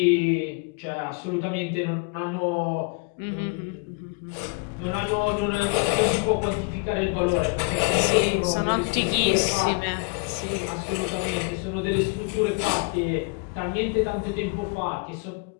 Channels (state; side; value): quieter; right; 32.7 dB